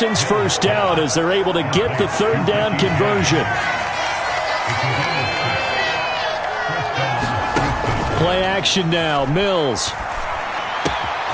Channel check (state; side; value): identical; both; correlation 1.00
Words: first down as they're able to get the third down conversion. Play action now, Mills.